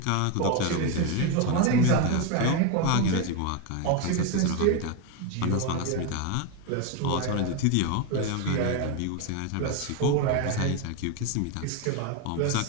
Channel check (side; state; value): both; different; correlation 0.02